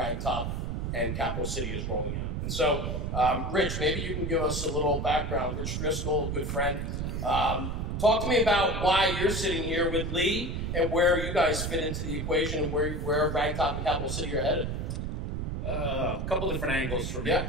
and Capital City is rolling out. And so, Rich, maybe you can give us a little background. Rich Driscoll, a good friend. Talk to me about why you're sitting here with Lee and where you guys fit into the equation and where Ragtop and Capital City are headed. A couple different angles for me.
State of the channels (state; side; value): noise; right; rumble, 2 dB below the sound